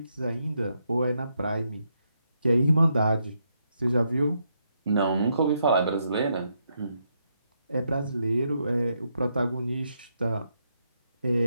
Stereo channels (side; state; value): both; inverted; correlation -0.79